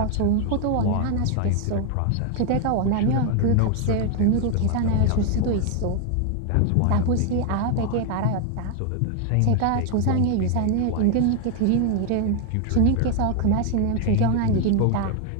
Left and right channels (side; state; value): both; different; correlation 0.00